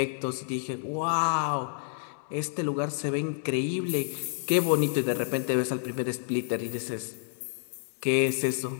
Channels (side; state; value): right; silent; digital silence